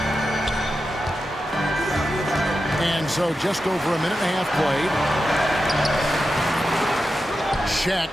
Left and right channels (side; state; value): both; normal; correlation 0.90